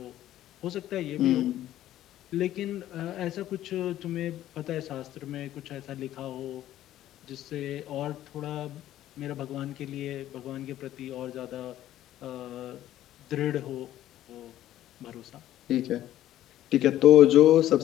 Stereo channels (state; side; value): quieter; right; 13.1 dB